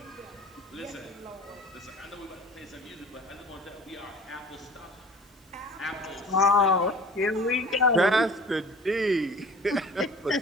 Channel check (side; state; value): both; normal; correlation 0.43